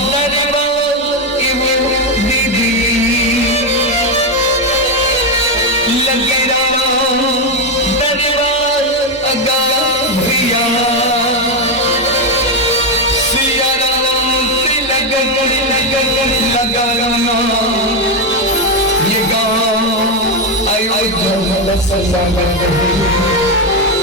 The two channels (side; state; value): both; normal; correlation 0.07